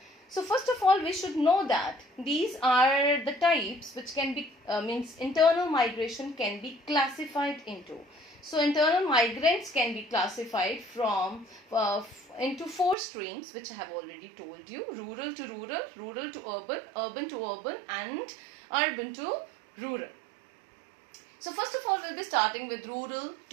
So first of all, we should know that these are the types which can be, means internal migration can be classified into. So internal migrants can be classified from into 4 streams, which I have already told you: rural to rural, rural to urban, urban to urban, and urban to rural. So first of all, we'll be starting with rural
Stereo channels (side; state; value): left; drops out; at 13.0 s